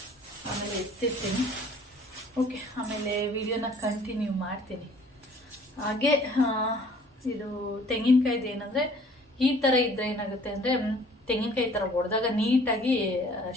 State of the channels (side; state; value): both; normal; correlation 0.54